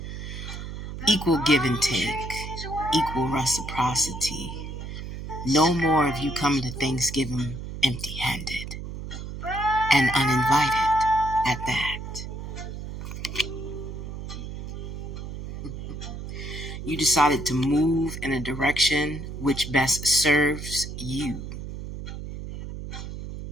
Equal give and take, equal reciprocity. No more of you coming to Thanksgiving empty-handed and uninvited at that. You decided to move in a direction which best serves you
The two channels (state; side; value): noise; right; hum, 8 dB below the sound